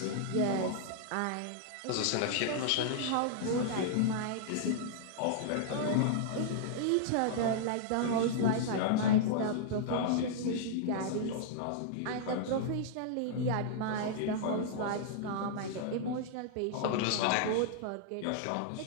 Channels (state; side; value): different; both; correlation -0.01